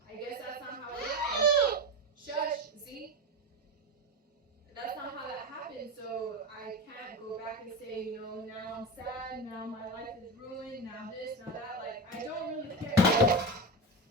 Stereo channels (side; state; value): both; normal; correlation 0.20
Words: I guess that's not how it happened. Shush, Z. That's not how that happened, so I can't go back and say, you know, now I'm sad, now my life is ruined, now this, now that. Like, I don't really care.